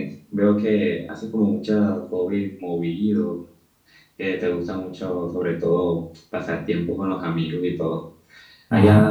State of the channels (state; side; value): identical; both; correlation 1.00